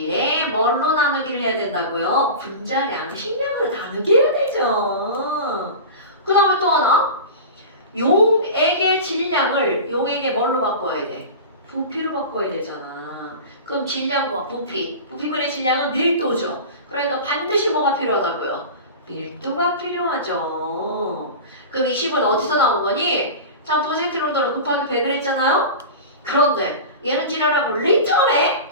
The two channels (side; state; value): both; inverted; correlation -0.30